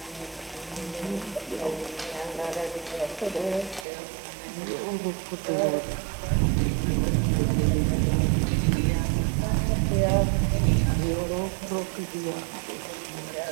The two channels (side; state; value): left; drops out; at 3.9 s